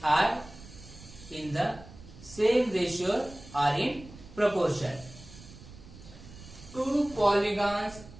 are in the same ratio or in proportion. Two polygons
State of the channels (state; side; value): noise; right; rumble, 18 dB below the sound